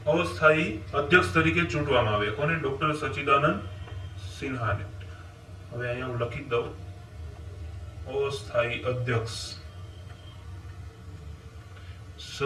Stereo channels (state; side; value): identical; both; correlation 1.00